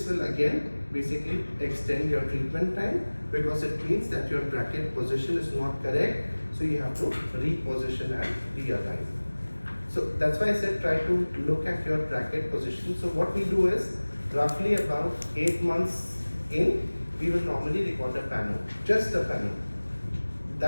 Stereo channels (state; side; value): inverted; both; correlation -1.00